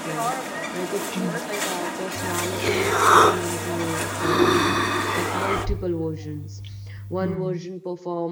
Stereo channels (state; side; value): identical; both; correlation 1.00